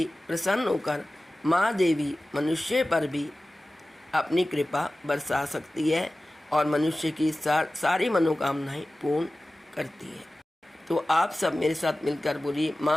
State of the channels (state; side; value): normal; both; correlation 0.96